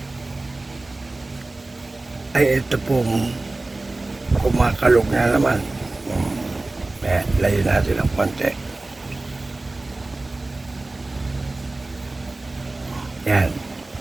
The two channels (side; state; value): left; quieter; 3.0 dB